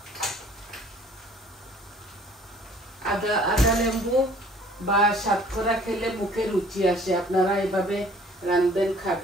আদা লেবু বা সাতকরা খেলে মুখে রুচি আসে। আপনারা এইভাবে রান্ধবেন,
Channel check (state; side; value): normal; both; correlation 0.54